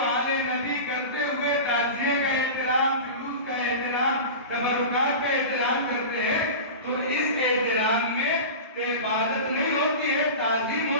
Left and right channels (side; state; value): both; inverted; correlation -0.30